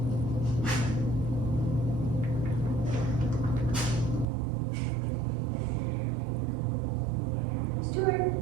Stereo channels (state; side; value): drops out; left; at 4.2 s